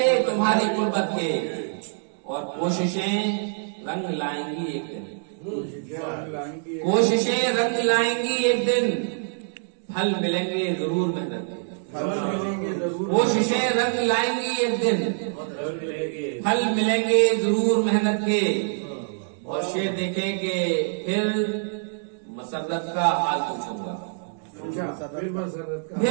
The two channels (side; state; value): left; silent; digital silence